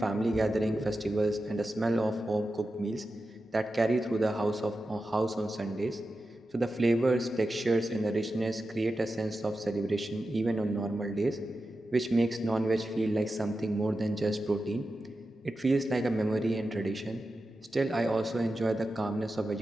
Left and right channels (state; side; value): normal; both; correlation 0.91